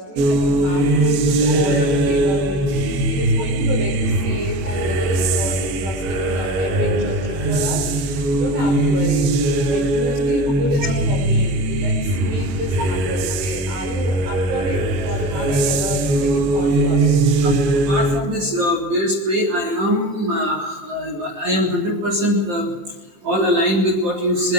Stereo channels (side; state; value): left; late; 21 ms